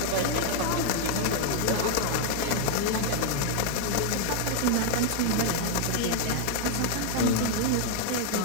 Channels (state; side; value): different; both; correlation 0.00